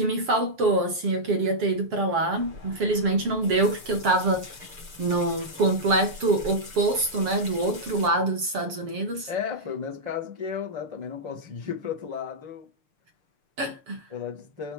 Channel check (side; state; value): left; late; 7.4 ms